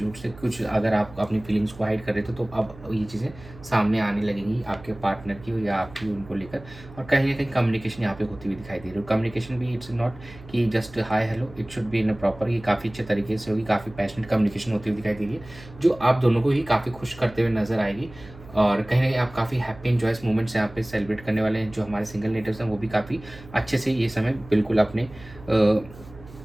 से कुछ, अगर आप अपनी फीलिंग्स को हाइड कर रहे थे तो अब ये चीज़ें सामने आने लगेंगी आपके पार्टनर की या आपकी उनको लेकर। और कहीं ना कहीं कम्युनिकेशन यहाँ पे होती हुई दिखाई दे रही है। कम्युनिकेशन भी इट्स नॉट कि just hi hello, it should be in a proper, ये काफ़ी अच्छे तरीके से होगी, काफ़ी पैशनेट कम्युनिकेशन होती हुई दिखाई दे रही है जो आप दोनों को ही काफ़ी खुश करते हुए नजर आएगी। और कहीं ना कहीं आप काफ़ी हैप्पी इंजॉयस मोमेंट्स यहाँ पे सेलिब्रेट करने वाले हैं। जो हमारे सिंगल नेटिव्स हैं वो भी काफ़ी अच्छे से ये समय बिल्कुल अपने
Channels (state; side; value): noise; right; hum, 19 dB below the sound